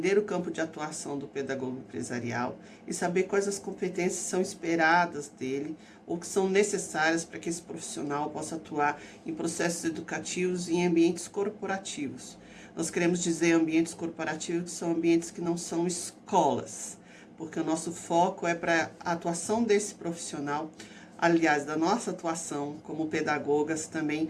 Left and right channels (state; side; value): identical; both; correlation 1.00